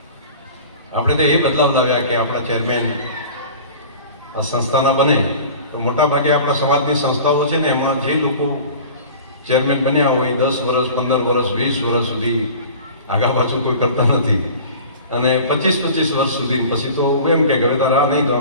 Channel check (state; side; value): inverted; both; correlation -0.41